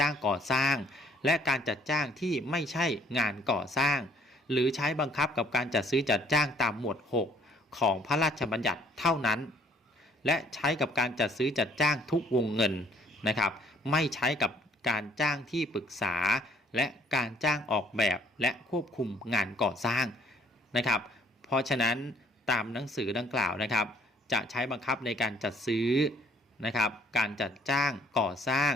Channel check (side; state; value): both; normal; correlation 0.61